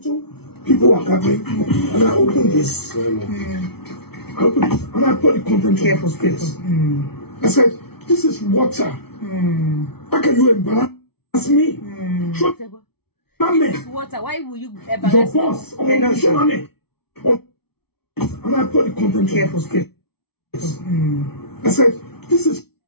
People are gathering, and I opened this. I opened this, and I put the content Careful, on this. I said, "This is water. How can you embarrass me? Show This is water. Why will you your embarrass me? boss. Show me." And I put the content Careful, on this. I said, "This is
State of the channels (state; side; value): late; right; 0.97 ms